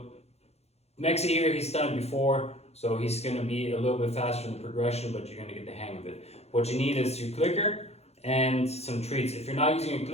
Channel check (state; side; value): late; right; 0.31 ms